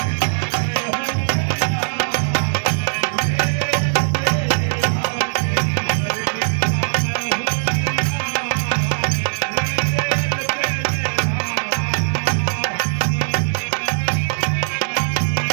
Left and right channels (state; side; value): silent; left; 59 dB below the other